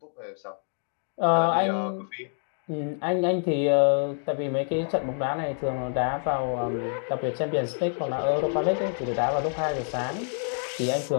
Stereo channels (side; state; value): right; silent; 60 dB below the other